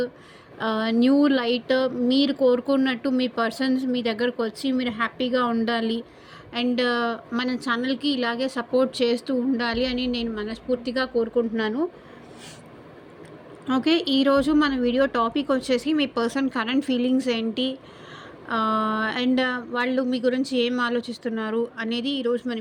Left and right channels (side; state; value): both; identical; correlation 1.00